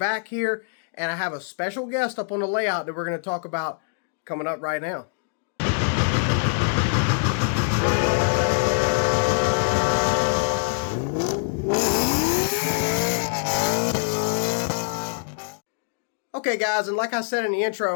here, and I have a special guest up on the layout that we're going to talk about coming up right now. Okay, guys, and like I said in the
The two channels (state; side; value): silent; right; digital silence